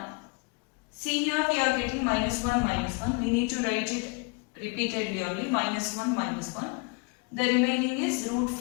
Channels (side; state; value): right; quieter; 30.6 dB